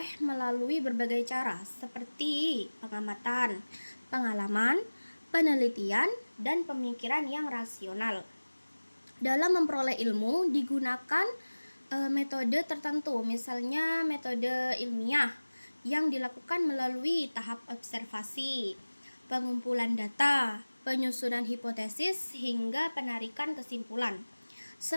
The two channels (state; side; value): inverted; both; correlation -1.00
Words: melalui berbagai cara, seperti pengamatan, pengalaman, penelitian, dan pemikiran yang rasional. Dalam memperoleh ilmu digunakan metode tertentu, misalnya metode ilmiah yang dilakukan melalui tahap observasi, pengumpulan data, penyusunan hipotesis, hingga penarikan kesimpulan.